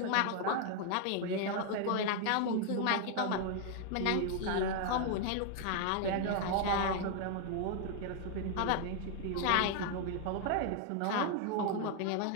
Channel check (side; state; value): both; different; correlation 0.00